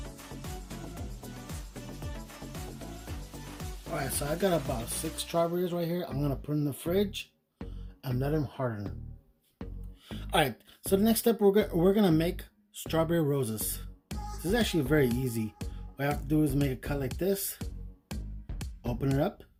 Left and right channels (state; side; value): identical; both; correlation 1.00